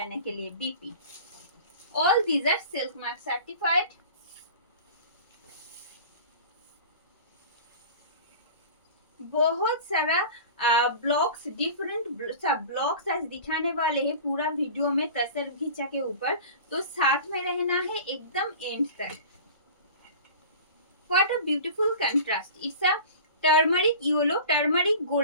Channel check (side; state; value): both; inverted; correlation -0.39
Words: के लिए. BP. All these are silk mark certified. बहुत सारा ब्लॉक्स, डिफरेंट सब ब्लॉक्स आज दिखाने वाले हैं पूरा वीडियो में तसर घीचा के ऊपर, तो साथ में रहना है एकदम एंड तक. What a beautiful contrast. It's a turmeric yellow, turmeric